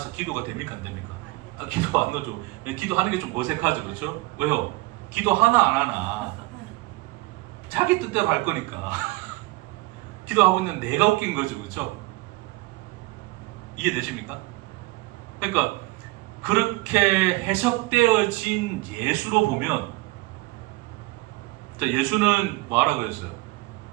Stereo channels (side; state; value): left; quieter; 22.1 dB